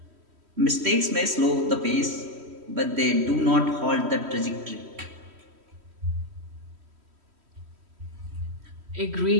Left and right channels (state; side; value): late; left; 3.1 ms